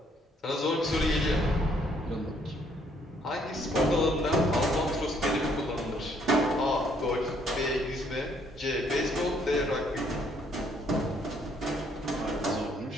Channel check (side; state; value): both; normal; correlation 0.67